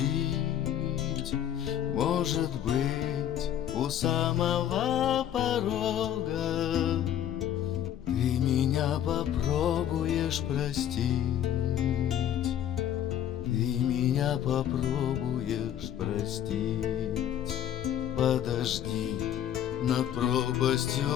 Может быть, у самого порога ты меня попробуешь простить. Ты меня попробуешь простить. Подожди над пропастью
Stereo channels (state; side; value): quieter; right; 10.5 dB